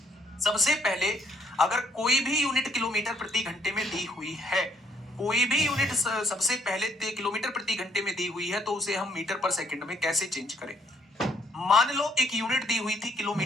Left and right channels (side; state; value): both; normal; correlation 0.68